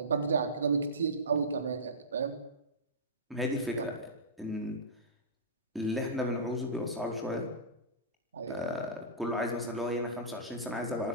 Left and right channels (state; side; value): normal; both; correlation -0.18